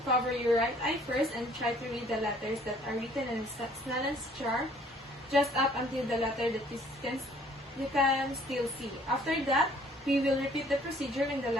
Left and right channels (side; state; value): both; normal; correlation 0.58